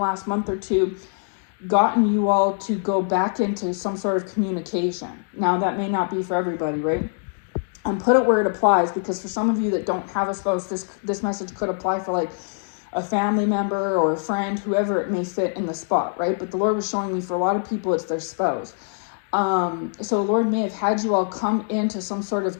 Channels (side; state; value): right; silent; digital silence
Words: month or two, gotten you all to go back into some sort of communication. Now, that may not be for everybody, right? And put it where it applies, because for some of you that don't have a spouse, this message could apply for like a family member or a friend, whoever it may fit in the spot, right? But the Lord was showing me for a lot of people, it's their spouse. So the Lord may have had you all come into some sort of